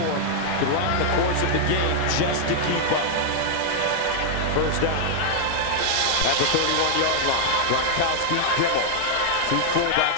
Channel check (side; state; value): both; different; correlation 0.00